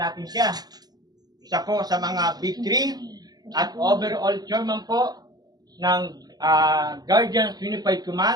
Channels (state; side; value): late; left; 0.19 ms